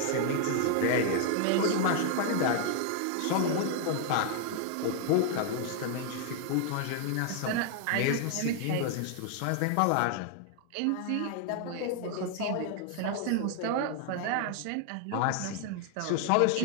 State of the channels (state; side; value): different; both; correlation 0.00